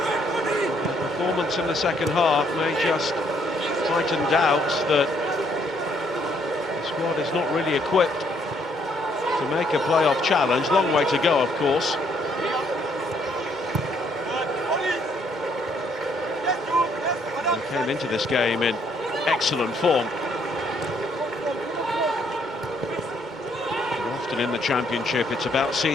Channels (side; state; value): both; normal; correlation 0.69